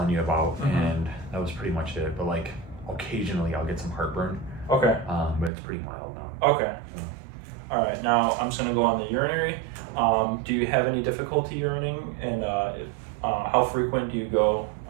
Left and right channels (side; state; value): left; drops out; at 5.5 s